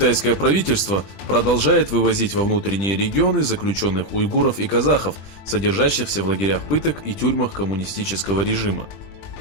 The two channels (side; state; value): right; late; 20 ms